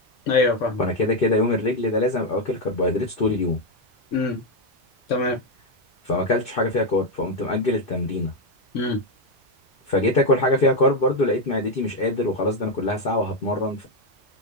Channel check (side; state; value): both; normal; correlation 0.05